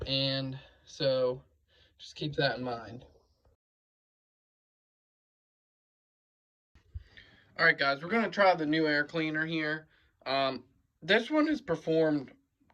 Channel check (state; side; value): identical; both; correlation 1.00